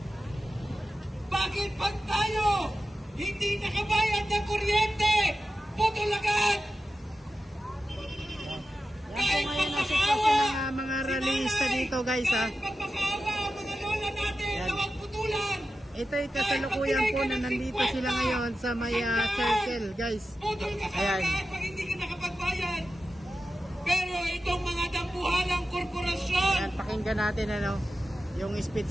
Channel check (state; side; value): normal; both; correlation 0.92